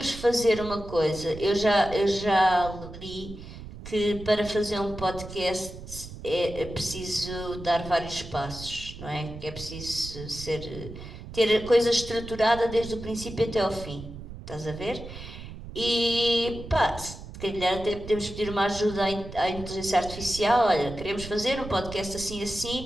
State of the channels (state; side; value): noise; right; rumble, 12 dB below the sound